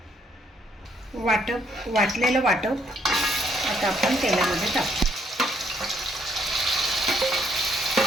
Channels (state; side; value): normal; both; correlation 0.70